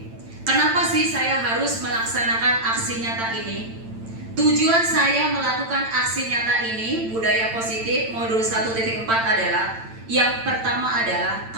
Kenapa sih saya harus melaksanakan aksi nyata ini? Tujuan saya melakukan aksi nyata ini, budaya positif modul 1.4 adalah yang pertama adalah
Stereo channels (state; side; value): late; left; 8.9 ms